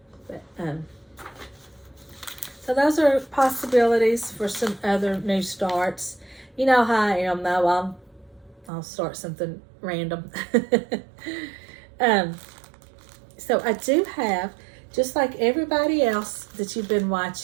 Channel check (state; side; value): drops out; left; at 8.7 s